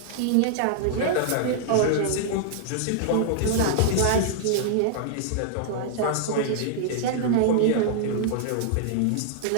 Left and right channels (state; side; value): different; both; correlation -0.01